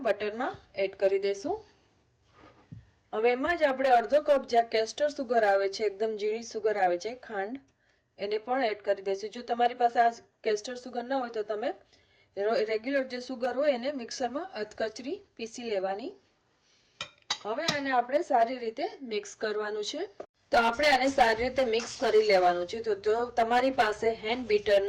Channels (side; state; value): both; identical; correlation 1.00